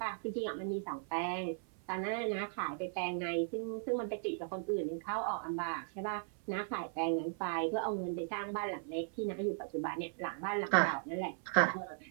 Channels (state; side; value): silent; left; 53 dB below the other